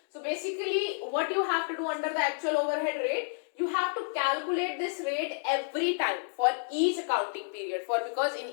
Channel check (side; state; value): right; silent; digital silence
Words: So basically what you have to do under the actual overhead rate, you have to calculate this rate every time for each accounting period, because in